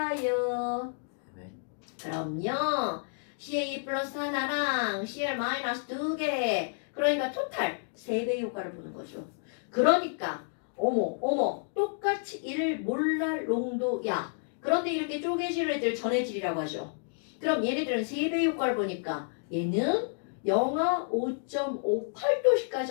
네. 그럼요. CA 플러스 하나랑 CL 마이너스 2개. 그러니까 토탈 3배의 효과를 보는 거죠. 그러니까 어머 똑같이 1 몰랄 농도야. 그런데 이렇게 쪼개질 애들 전해질이라고 하죠. 그럼 얘네들은 3배의 효과를 보니까 얘는 영하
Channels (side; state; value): right; silent; digital silence